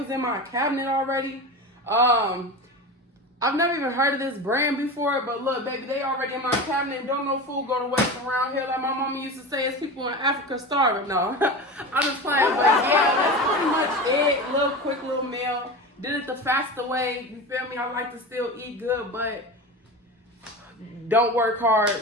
in my cabinet already. I've never even heard of this brand before, but look, baby, they already in my cabinet. Don't no food go to waste around here. Like my mama used to say, it's people in Africa starving. No, I'm just playing, but yeah, that's pretty much it. Little quick little meal. Did it the faster way. You feel me? I like to still eat good, but don't work hard.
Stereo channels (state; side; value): normal; both; correlation 0.27